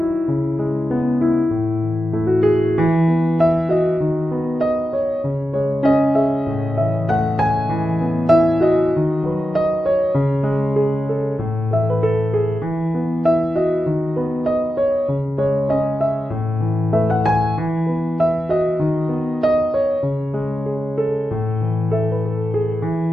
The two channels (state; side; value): normal; both; correlation 0.91